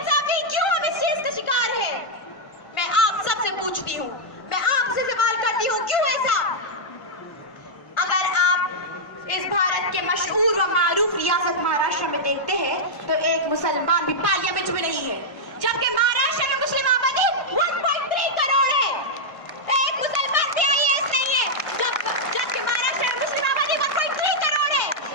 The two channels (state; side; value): late; right; 1.5 ms